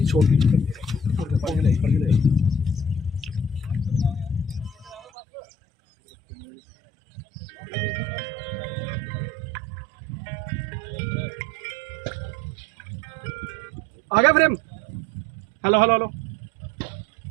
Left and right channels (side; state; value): left; drops out; at 5.0 s